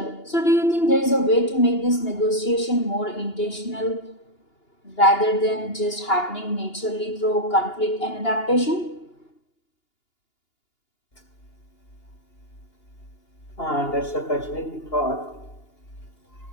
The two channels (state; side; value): late; right; 2.8 ms